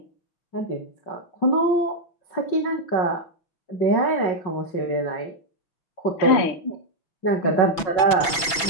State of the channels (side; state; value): right; late; 6.0 ms